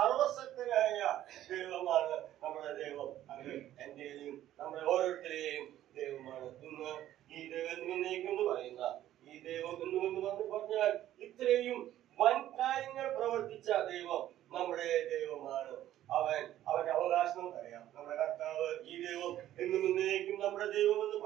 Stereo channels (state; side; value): quieter; left; 12.8 dB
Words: ദൈവമാണ് നമ്മുടെ ദൈവം, അത് എന്റെയും നമ്മുടെ ഓരോരുത്തരെയും ദൈവമാണ്. ഇന്ന് ഈ ദൈവം എന്ന് പറയുന്ന ഈ ദൈവം എന്ന് പറഞ്ഞാൽ ഇത്രയും വൻ കാര്യങ്ങൾ പ്രവർത്തിച്ച ദൈവം നമ്മുടെ ദൈവമാണ്. അവന്റെ അവകാശം അറിയാം. നമ്മുടെ കർത്താവ് ഈ ദൈവം എന്നേക്കും നമ്മുടെ ദൈവം എന്ന്